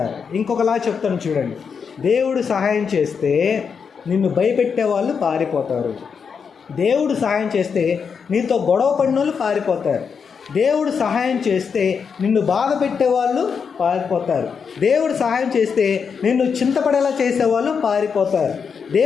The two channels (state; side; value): quieter; right; 6.2 dB